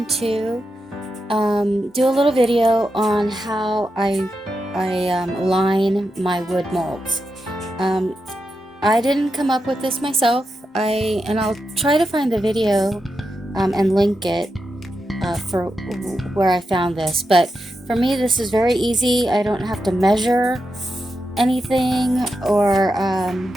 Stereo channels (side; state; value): both; normal; correlation 0.87